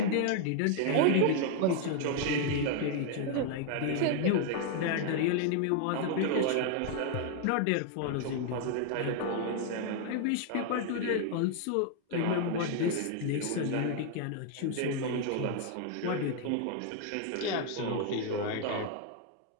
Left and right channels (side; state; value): both; different; correlation 0.00